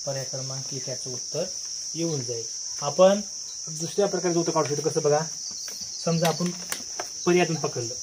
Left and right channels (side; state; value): both; identical; correlation 1.00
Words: पर्याय क्रमांक 1 याचं उत्तर येऊन जाईल. आपण दुसऱ्या प्रकारचं उत्तर काढू शकतो. कसं बघा, समजा आपण पर्यायातून पकडलं